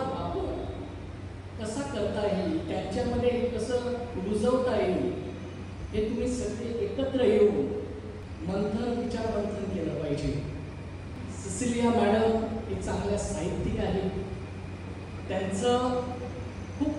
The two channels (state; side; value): identical; both; correlation 1.00